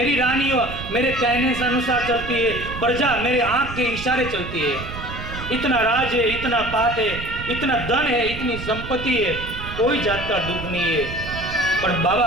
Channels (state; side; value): noise; right; rumble, 10 dB below the sound